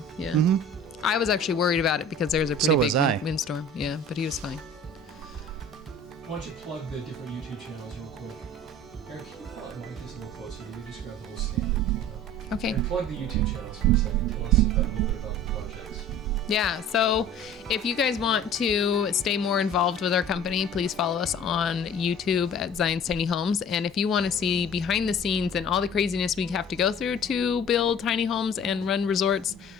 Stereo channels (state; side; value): normal; both; correlation 0.45